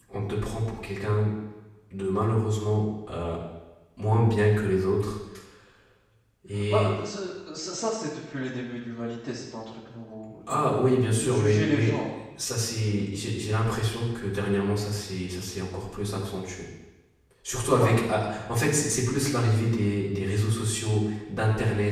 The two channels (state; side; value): identical; both; correlation 1.00